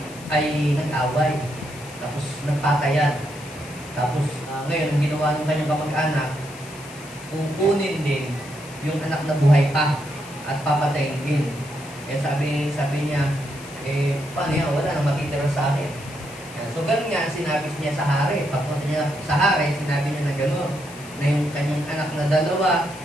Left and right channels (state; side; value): noise; left; hiss, 18 dB below the sound